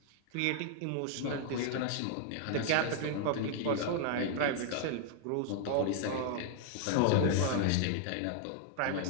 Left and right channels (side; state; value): both; different; correlation 0.00